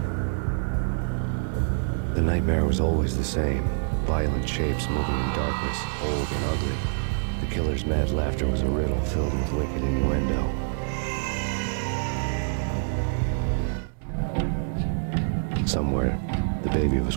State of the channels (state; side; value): silent; left; 61 dB below the other